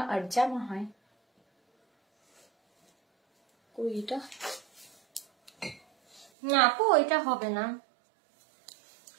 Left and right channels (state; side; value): drops out; left; at 6.2 s